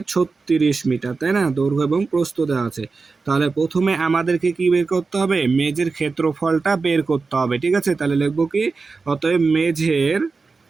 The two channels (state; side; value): quieter; left; 4.3 dB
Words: 36 মিটার, তাই না? দৈর্ঘ্য এবং প্রস্থ দেওয়া আছে। তাহলে প্রথমে আমাদেরকে কি বের করতে হবে? মেঝের ক্ষেত্রফলটা বের করতে হবে, ঠিক আছে? তাহলে লিখবো কি? অতএব মেঝের